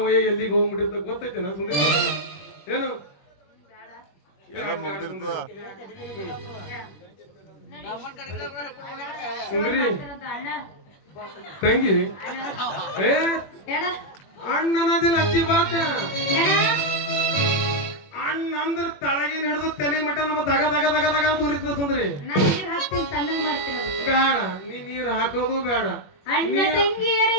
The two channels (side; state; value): right; late; 21 ms